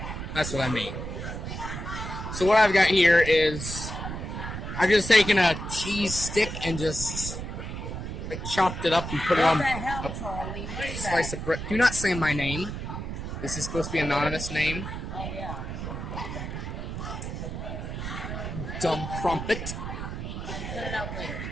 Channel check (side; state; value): right; noise; rumble, 6 dB below the sound